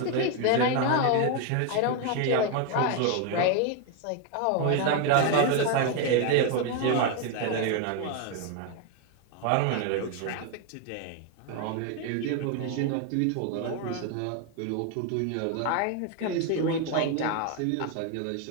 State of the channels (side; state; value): both; different; correlation 0.01